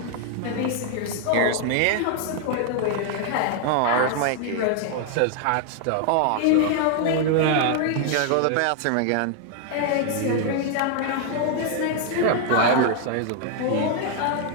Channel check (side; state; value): both; different; correlation 0.00